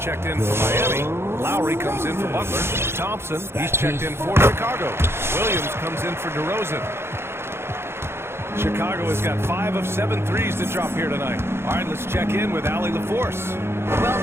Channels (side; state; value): left; late; 0.12 ms